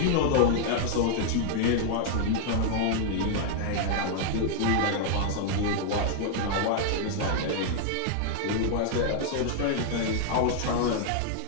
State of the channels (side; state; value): both; different; correlation 0.00